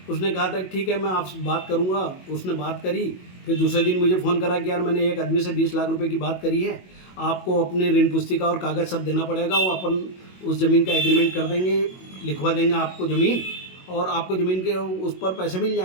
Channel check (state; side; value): late; right; 22 ms